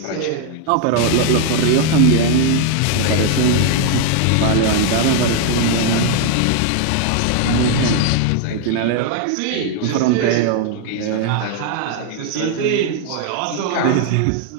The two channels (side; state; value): both; different; correlation 0.00